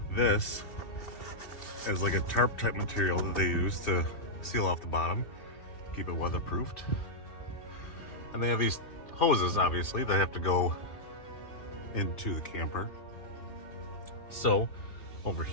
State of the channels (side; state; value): right; late; 2.9 ms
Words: this is like a tarp type material that they use to seal off the bottom, keep it weatherproofed. And they have these hoses, obviously, that have to go into the camper. So over